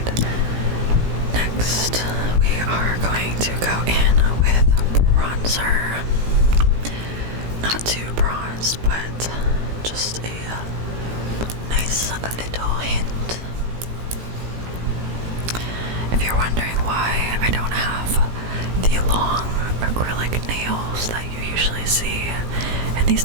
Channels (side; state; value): left; late; 17 ms